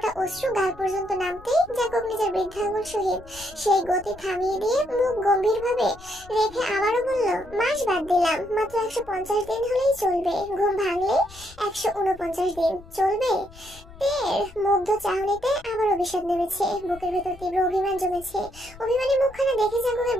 অশ্রু গাল পর্যন্ত নামতেই জাঙ্কুক নিজের বৃদ্ধাঙ্গুল সহিত সেই গতি থামিয়ে দিয়ে মুখ গম্ভীরভাবে রেখে আবারও বলল, মাস বাদ দিলাম, মাত্র 150 দিন হলেই চলবে। ঘুম ভাঙলে 149 দিন চলবে। তের মুগ্ধ চাহনিতে আবার অভিশাপ নেমেছে। বুকের ভেতর তীব্র অভিমান জমেছে। অভিমানী মুখখানা দেখে জাঙ্কুকের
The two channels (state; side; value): noise; left; rumble, 20 dB below the sound